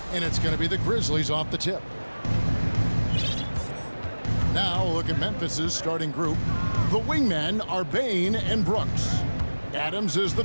And it's going to be the Grizzlies off the tip. Now look at Memphis's starting group. The wingmen are Bain and Brooks. Adams is the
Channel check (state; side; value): inverted; both; correlation -1.00